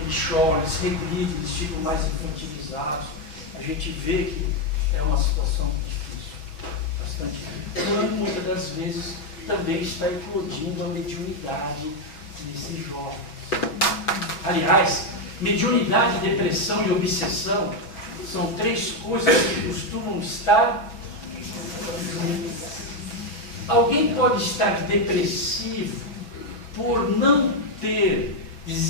choram, eles regridem, eles ficam mais infantilizados. A gente vê que é uma situação difícil, bastante difícil. Quando muitas das vezes também está eclodindo a mediunidade desses jovens. Aliás, mediunidade, depressão e obsessão são 3 coisas que costumam estar juntas. Alguém pode estar depressivo por não ter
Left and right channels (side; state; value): right; late; 6.3 ms